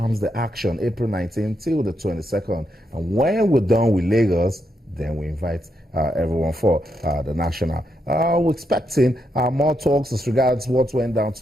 the action, April 19th till the 22nd. And when we're done with Lagos, then we invite everyone for the national. We're expecting more talks as regards what went down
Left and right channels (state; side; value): normal; both; correlation 0.81